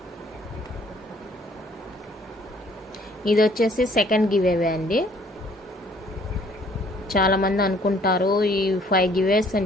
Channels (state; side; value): normal; both; correlation 0.60